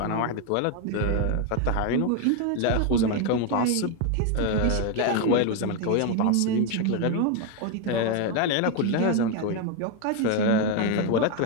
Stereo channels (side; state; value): both; different; correlation 0.01